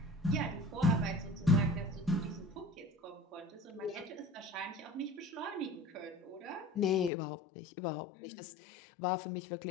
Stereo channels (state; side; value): drops out; right; at 7.1 s